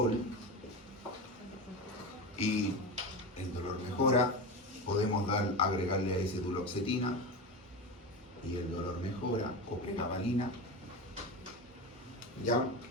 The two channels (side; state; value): both; normal; correlation 0.23